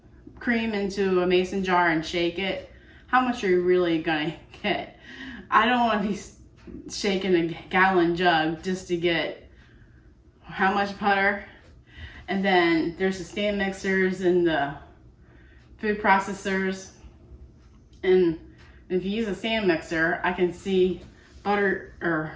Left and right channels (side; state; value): both; identical; correlation 1.00